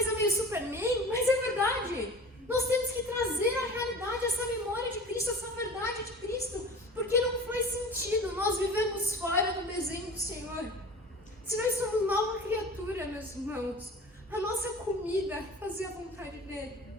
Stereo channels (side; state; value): both; normal; correlation 0.38